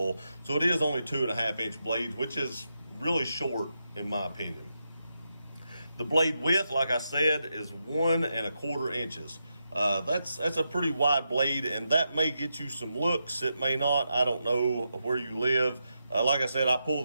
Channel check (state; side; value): inverted; both; correlation -0.86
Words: So it is only 2.5 inch blades, which is really short in my opinion. The blade width, like I said, is 1.25 inches. That's a pretty wide blade, and that may get you some looks. It may not. I don't know where you live. Like I said, I pull